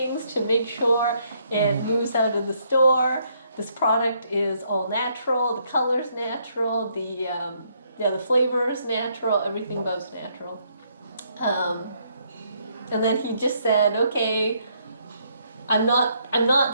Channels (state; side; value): inverted; both; correlation -0.71